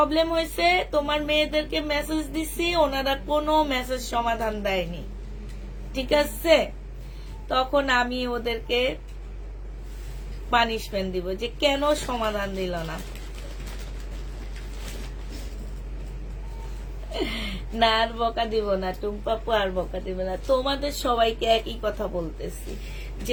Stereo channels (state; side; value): identical; both; correlation 1.00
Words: হয়েছে, তোমার মেয়েদেরকে মেসেজ দিছি, ওনারা কোনো মেসেজ সমাধান দেয়নি, ঠিক আছে? তখন আমি ওদেরকে পানিশমেন্ট দিব যে কেন সমাধান দিল না। না, আর বকা দিব না টুম্পাপু, আর বকা দিব না। তোমাদের সবাইকে একই কথা বলতেছি,